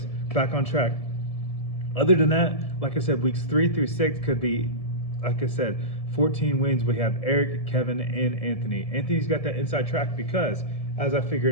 back on track. Other than that, like I said, weeks 3 through 6 could be, like I said, 14 wins. We have Eric, Kevin, and Anthony. Anthony's got that inside track because, as I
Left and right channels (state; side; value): late; right; 1.7 ms